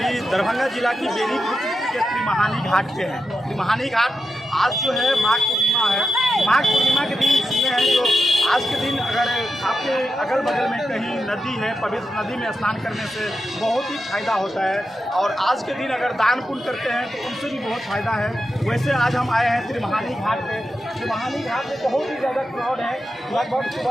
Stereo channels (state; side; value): normal; both; correlation 0.88